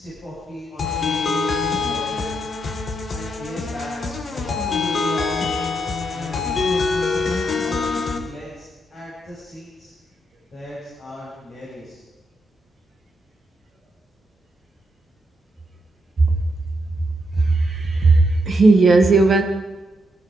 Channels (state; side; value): normal; both; correlation 0.80